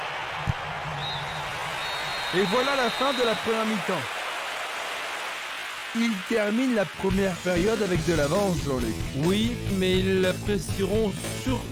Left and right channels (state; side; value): identical; both; correlation 1.00